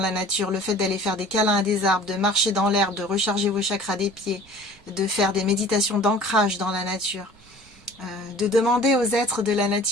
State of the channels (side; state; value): right; noise; rumble, 27 dB below the sound